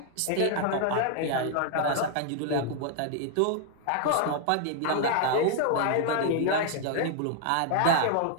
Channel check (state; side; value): different; both; correlation 0.00